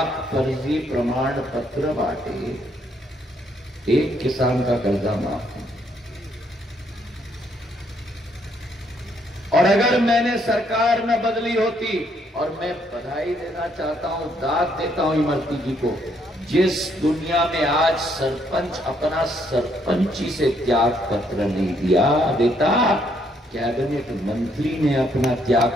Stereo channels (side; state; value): both; normal; correlation 0.71